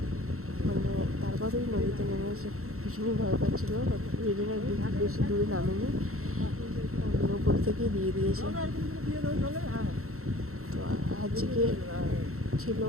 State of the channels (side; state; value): left; late; 0.63 ms